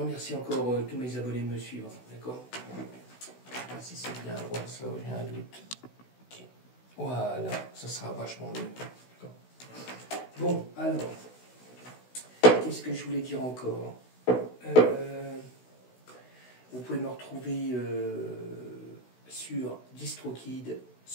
encore tous mes abonnés de me suivre. D'accord. Si c'est bien à droite, ça, j'ai un doute. Okay. Voilà, ça sera vachement mieux. Bon, alors, qu'est-ce que je voulais dire encore? Vous pouvez me retrouver sur DistroKid,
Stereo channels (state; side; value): late; right; 16 ms